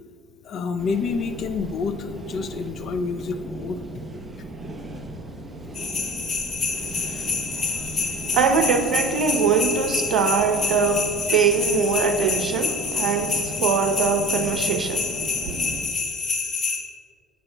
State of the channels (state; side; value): normal; both; correlation 0.42